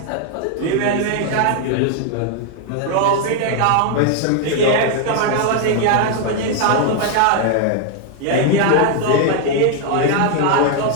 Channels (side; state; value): both; different; correlation 0.00